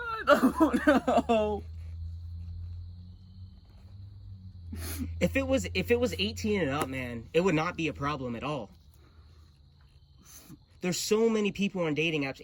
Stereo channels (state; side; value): identical; both; correlation 1.00